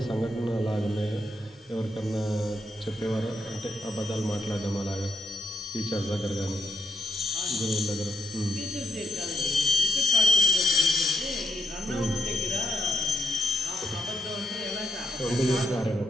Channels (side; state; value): both; normal; correlation 0.80